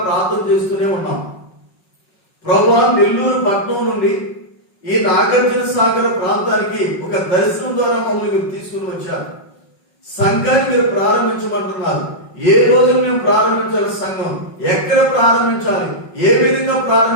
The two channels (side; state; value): right; late; 5.4 ms